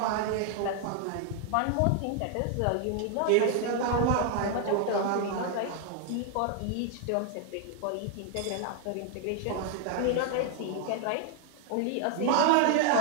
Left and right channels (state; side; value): different; both; correlation 0.00